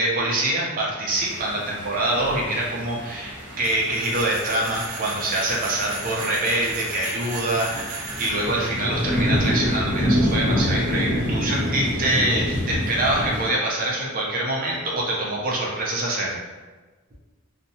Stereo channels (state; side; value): normal; both; correlation 0.25